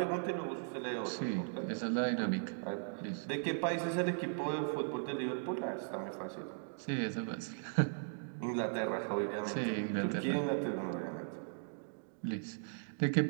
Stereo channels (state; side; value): silent; left; digital silence